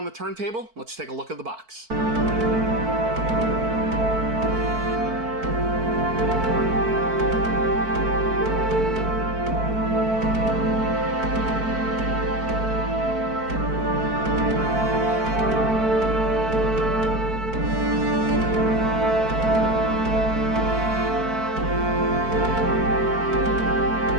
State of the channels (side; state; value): left; late; 4.5 ms